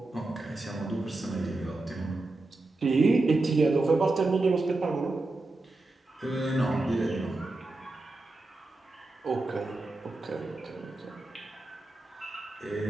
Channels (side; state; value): left; quieter; 3.1 dB